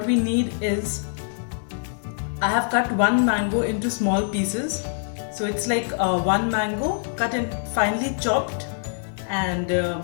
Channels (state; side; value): silent; right; digital silence